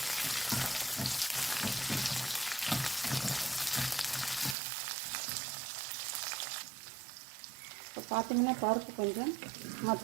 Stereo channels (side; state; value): left; drops out; at 4.5 s